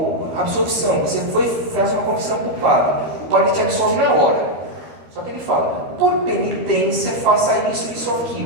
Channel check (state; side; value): late; left; 12 ms